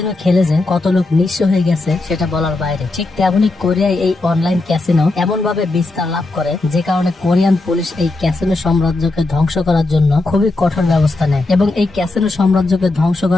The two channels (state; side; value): quieter; right; 3.1 dB